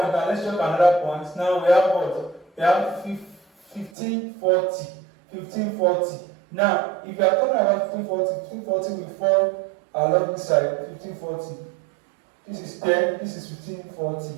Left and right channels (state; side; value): drops out; left; at 3.9 s